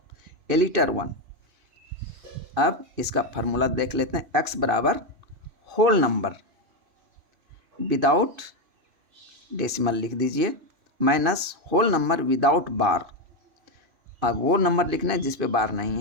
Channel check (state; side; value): late; left; 2.5 ms